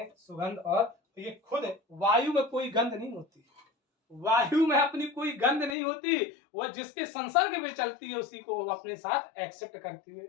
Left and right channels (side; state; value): right; drops out; at 5.8 s